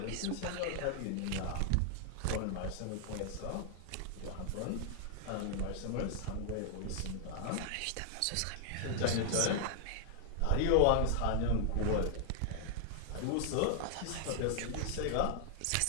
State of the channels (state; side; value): different; both; correlation 0.00